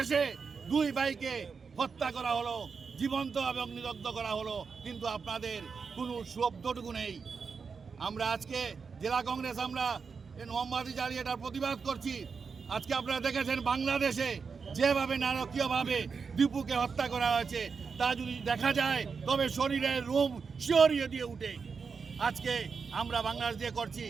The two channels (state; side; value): quieter; left; 5.4 dB